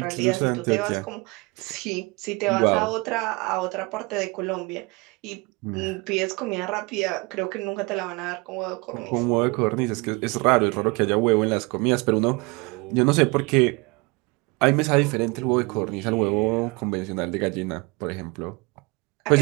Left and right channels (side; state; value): left; quieter; 26.7 dB